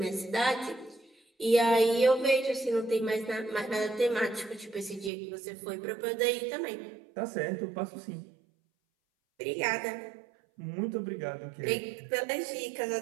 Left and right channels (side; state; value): left; drops out; at 5.1 s